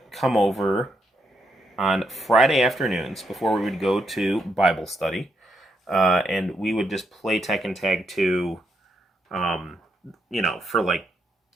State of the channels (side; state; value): both; normal; correlation 0.79